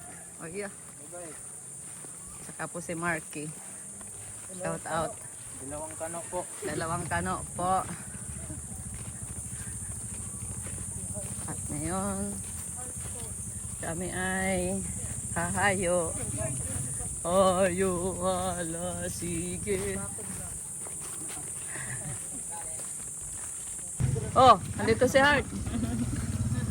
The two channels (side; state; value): both; identical; correlation 1.00